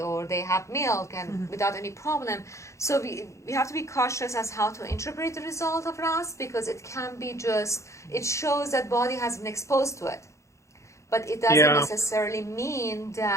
they have milk and without any problem. So we have to be cautious as how to interpret the result of RAS, because it can be it shows that body has been exposed to it. But it doesn't necessarily mean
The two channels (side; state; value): right; late; 0.14 ms